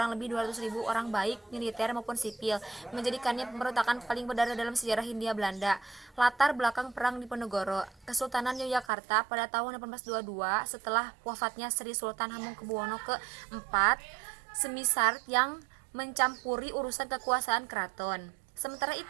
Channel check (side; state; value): left; drops out; at 8.9 s